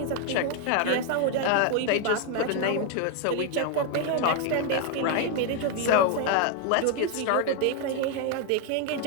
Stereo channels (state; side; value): different; both; correlation 0.00